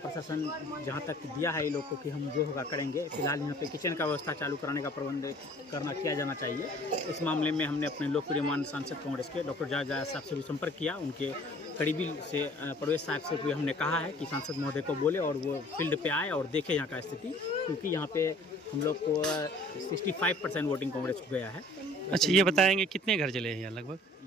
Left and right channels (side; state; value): both; normal; correlation 0.52